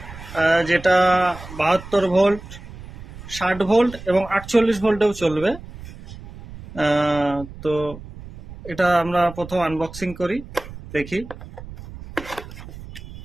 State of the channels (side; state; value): right; noise; rumble, 15 dB below the sound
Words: যেটা 72 ভোল্ট, 60 ভোল্ট এবং 48 ভোল্টেও চলবে। তো এটা আমরা প্রথম আনবক্সিং করি, দেখি।